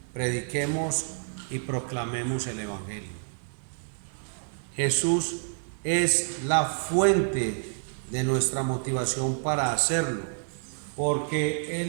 Prediquemos y proclamemos el Evangelio. Jesús es la fuente de nuestra motivación para hacerlo, porque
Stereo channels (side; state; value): left; silent; 59 dB below the other